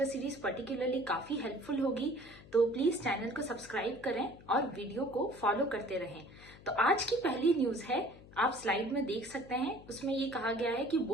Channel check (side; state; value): left; noise; hum, 20 dB below the sound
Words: सीरीज पर्टिकुलरली काफी हेल्पफुल होगी। तो प्लीज चैनल को सब्सक्राइब करें और वीडियो को फॉलो करते रहें। तो आज की पहली न्यूज है, आप स्लाइड में देख सकते हैं, उसमें ये कहा गया है कि